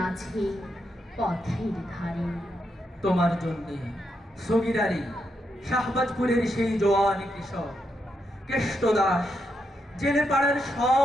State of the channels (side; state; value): both; normal; correlation 0.82